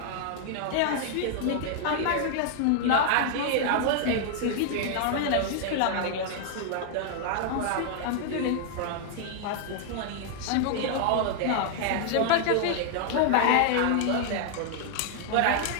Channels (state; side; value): different; both; correlation 0.00